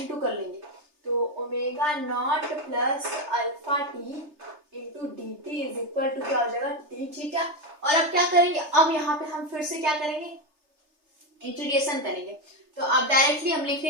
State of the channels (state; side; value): late; left; 3.3 ms